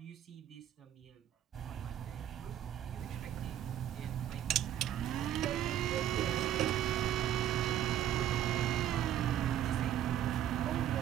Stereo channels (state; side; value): quieter; left; 11.2 dB